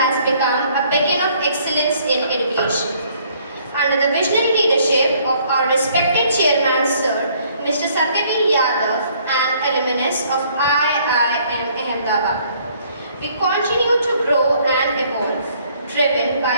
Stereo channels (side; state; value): both; inverted; correlation -0.62